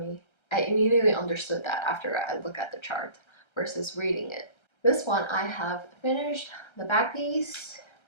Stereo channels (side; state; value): right; late; 1.3 ms